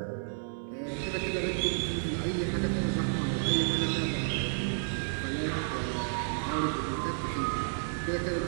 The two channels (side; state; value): left; silent; digital silence